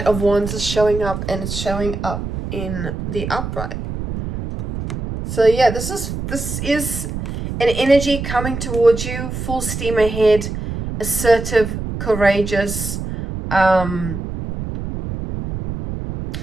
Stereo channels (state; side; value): noise; right; rumble, 6 dB below the sound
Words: of Wands is showing up, and it's showing up in the upright. So yeah, this is an energy coming towards you, full steam ahead, assertive, courageous.